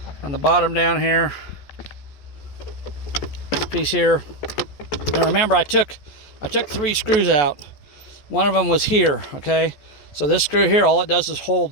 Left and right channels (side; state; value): right; late; 14 ms